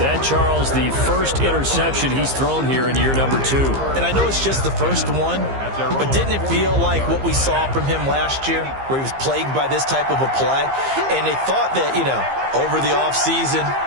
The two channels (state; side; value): late; left; 15 ms